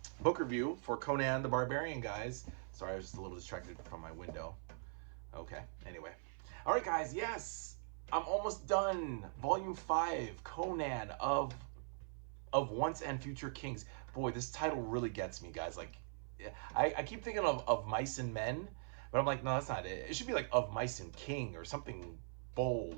book review for Conan the Barbarian, guys. Sorry, I was just a little distracted from my window. Okay, anyway. All right, guys, yes, I'm almost done. Volume 5, Conan of Once and Future Kings. Boy, this title really gets me, guys. Like, I keep thinking of Mice and Men, but I'm like, no, that's not it. It should be like Of Mice and King or something bold,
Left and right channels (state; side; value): silent; left; 50 dB below the other